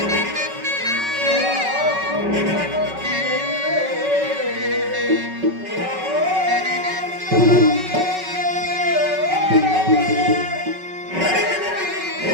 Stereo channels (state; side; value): late; left; 5.3 ms